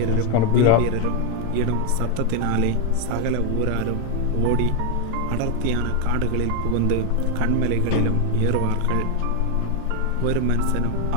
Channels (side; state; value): both; different; correlation 0.01